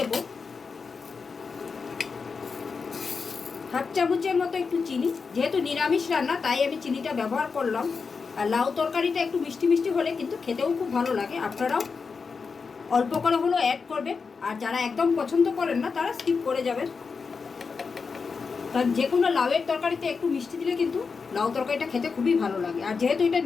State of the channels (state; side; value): quieter; right; 5.1 dB